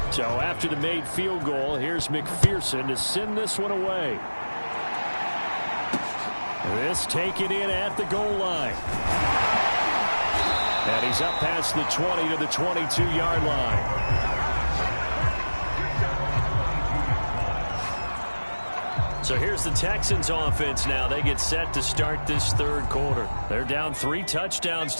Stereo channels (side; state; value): both; inverted; correlation -1.00